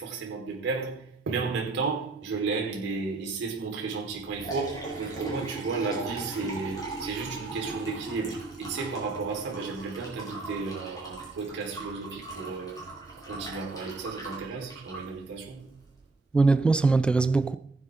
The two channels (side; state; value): left; quieter; 3.6 dB